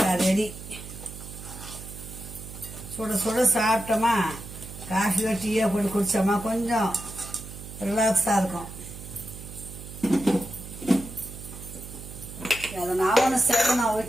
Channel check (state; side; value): noise; right; hum, 13 dB below the sound